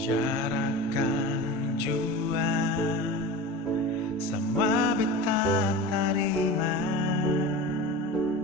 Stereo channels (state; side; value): normal; both; correlation 0.31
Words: jua semua beta terima.